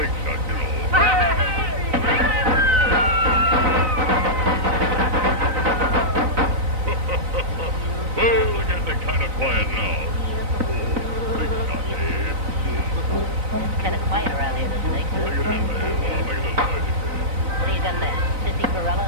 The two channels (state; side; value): late; left; 3.9 ms